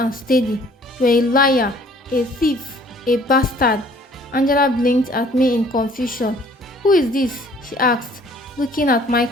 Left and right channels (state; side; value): normal; both; correlation 0.56